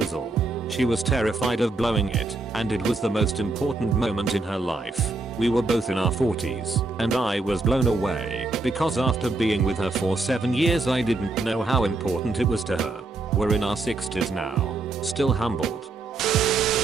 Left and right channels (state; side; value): quieter; left; 3.3 dB